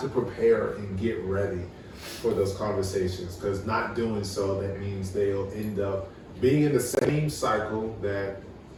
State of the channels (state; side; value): identical; both; correlation 1.00